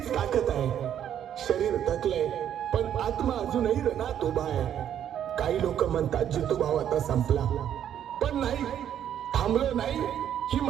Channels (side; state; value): left; quieter; 9.9 dB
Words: ताकद आहे. शरीर थकलंय पण आत्मा अजूनही रणात उभा आहे. काही लोक म्हणतात जितू भाव आता संपला, पण नाही, थांबलो नाही. ही